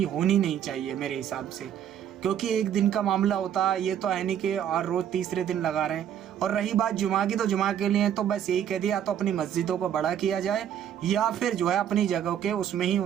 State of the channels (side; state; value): left; quieter; 9.7 dB